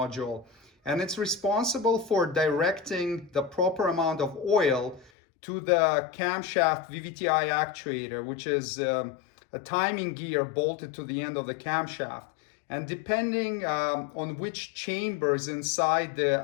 and it's responsible for directing the proper amount of oil to the camshaft VVTi actuator, which is a timing gear bolted to the end of the camshaft. And depending on which chambers inside the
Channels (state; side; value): drops out; right; at 5.1 s